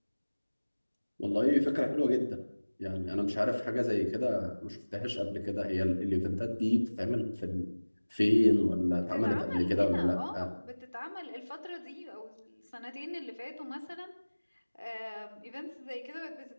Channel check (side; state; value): both; inverted; correlation -1.00